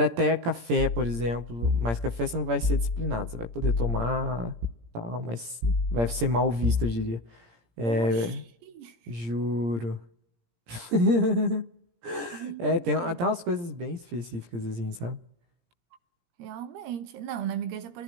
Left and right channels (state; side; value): late; left; 17 ms